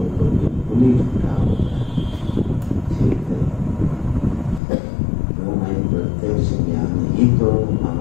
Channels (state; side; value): drops out; right; at 4.6 s